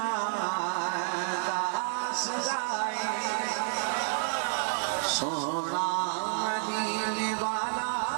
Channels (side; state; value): left; silent; digital silence